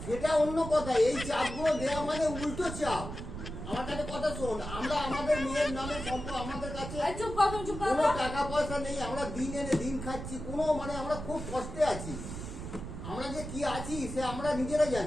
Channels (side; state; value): right; noise; rumble, 8 dB below the sound